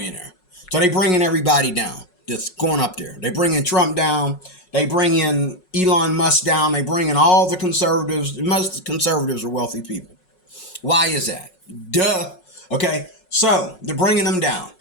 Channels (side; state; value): right; late; 5.5 ms